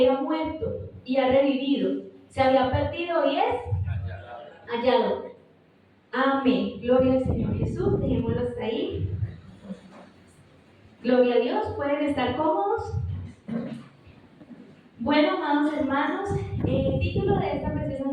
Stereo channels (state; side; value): identical; both; correlation 1.00